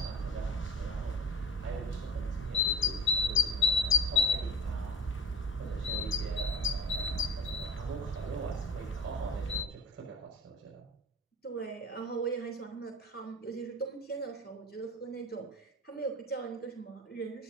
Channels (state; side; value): normal; both; correlation 0.36